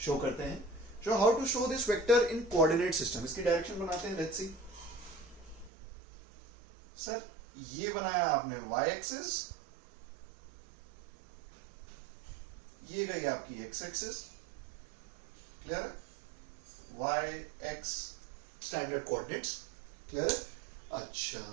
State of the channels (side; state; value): left; drops out; at 5.7 s